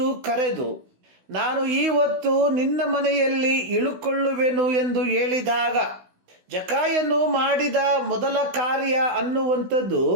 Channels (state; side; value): late; left; 16 ms